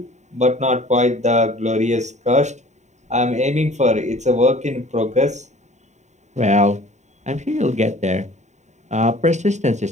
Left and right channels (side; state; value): left; late; 0.34 ms